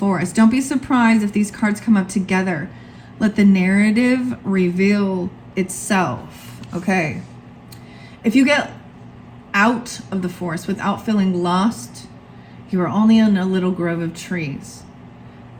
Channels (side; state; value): both; identical; correlation 1.00